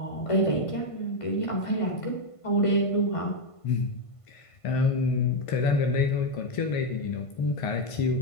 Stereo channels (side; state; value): right; late; 1.5 ms